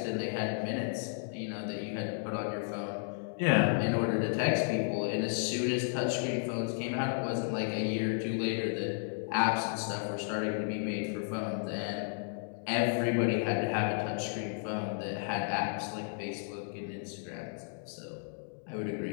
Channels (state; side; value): silent; right; digital silence